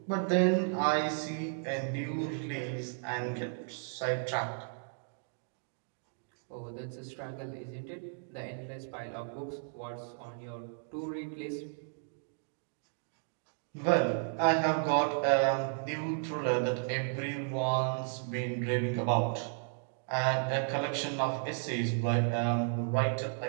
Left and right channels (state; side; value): silent; left; digital silence